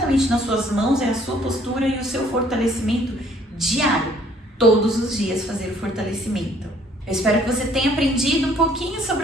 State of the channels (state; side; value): normal; both; correlation 0.61